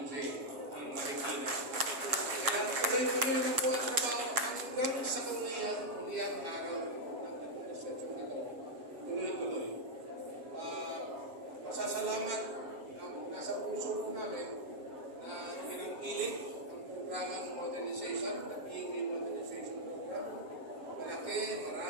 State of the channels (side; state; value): left; late; 7.4 ms